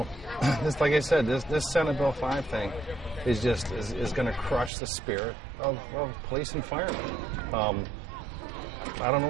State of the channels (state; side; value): drops out; left; at 4.7 s